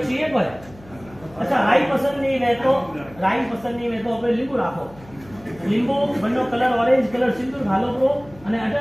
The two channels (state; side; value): noise; left; hum, 22 dB below the sound